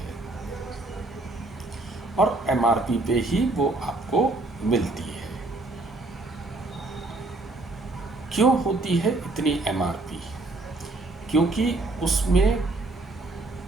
और एमआरपी पे ही वो आपको मिलती है। क्यों होती है इतनी एमआरपी? क्योंकि उसमें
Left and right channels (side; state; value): left; quieter; 3.0 dB